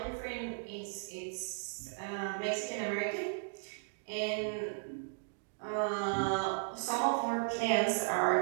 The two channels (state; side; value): silent; left; digital silence